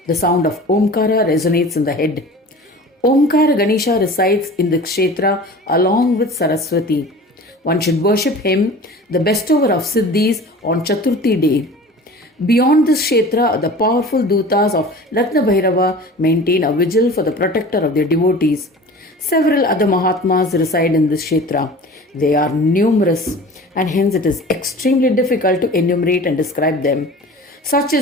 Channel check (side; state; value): both; normal; correlation 0.40